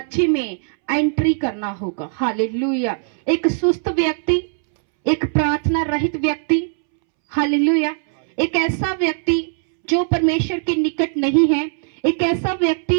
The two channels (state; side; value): silent; left; 66 dB below the other